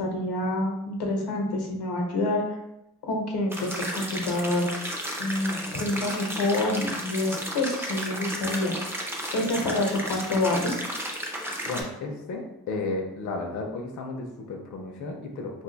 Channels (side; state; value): both; normal; correlation 0.32